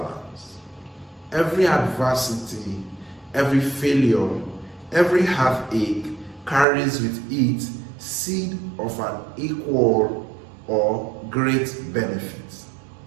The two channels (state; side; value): drops out; left; at 6.7 s